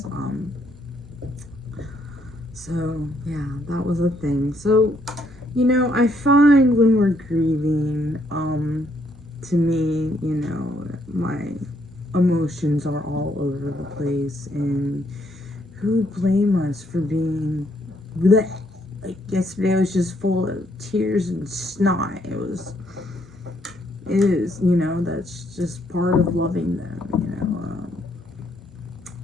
So, yeah, that was a thing. So, you know, I find when we're grieving, to me, you know, my emotions are all over the place, and who would blame us for being bleh? Like yesterday was just full of tears and snot. It is, you know, that's just part of loving them, you know.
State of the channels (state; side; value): normal; both; correlation 0.71